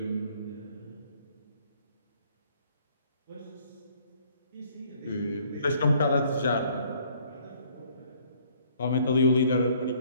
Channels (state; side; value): inverted; both; correlation -0.61